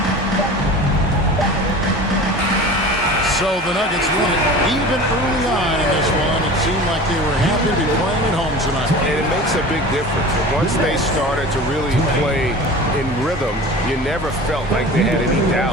So the Nuggets won it even early on in this one. It seemed like they were happy to be playing at home tonight. And it makes a big difference. Once they started to really play in rhythm, you never felt like they had any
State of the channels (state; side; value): normal; both; correlation 0.37